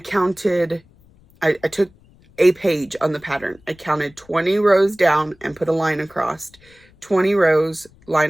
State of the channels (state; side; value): noise; left; rumble, 29 dB below the sound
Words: I took a page on the pattern. I counted 20 rows down and put a line across 20 rows,